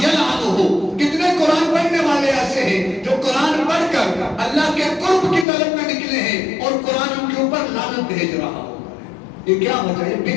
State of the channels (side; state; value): right; drops out; at 5.5 s